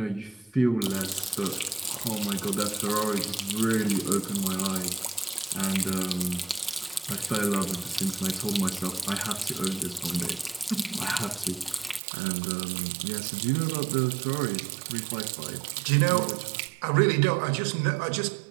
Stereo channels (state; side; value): drops out; left; at 12.0 s